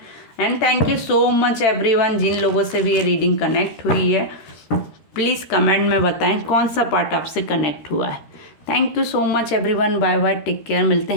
And thank you so much everyone, जिन लोगों से भी ये रीडिंग कनेक्ट हुई है प्लीज़ कमेंट में बताएं कौन सा पार्ट आपसे कनेक्ट हुआ है। Thank you so much everyone, bye bye, take care, मिलते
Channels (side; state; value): right; late; 13 ms